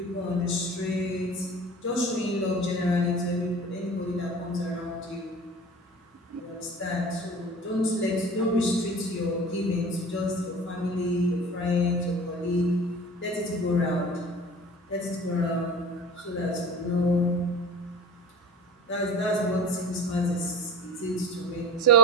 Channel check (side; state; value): both; normal; correlation 0.38